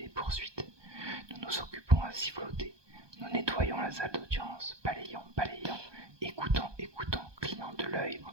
poursuites, nous nous occupons à siffloter. Nous nettoyons la salle d'audience, balayons, écoutons, clignant de l'œil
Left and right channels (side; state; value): left; late; 1.2 ms